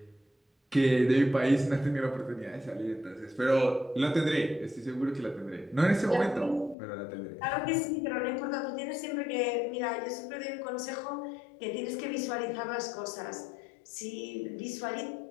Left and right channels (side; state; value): right; drops out; at 6.8 s